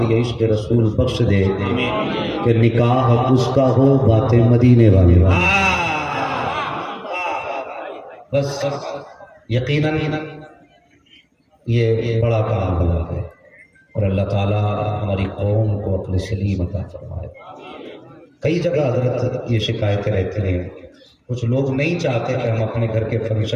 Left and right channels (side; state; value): both; identical; correlation 1.00